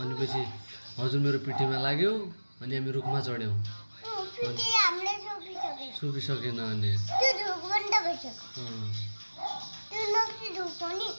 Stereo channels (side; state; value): both; inverted; correlation -1.00